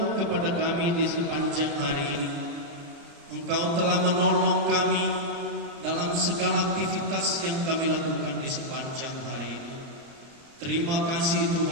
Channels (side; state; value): left; late; 30 ms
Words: kepada kami di sepanjang hari ini. Engkau telah menolong kami dalam segala aktivitas yang kami lakukan di sepanjang hari ini. Terima kasih